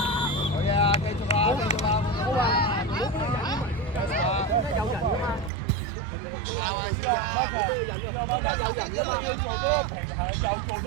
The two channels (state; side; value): drops out; left; at 5.5 s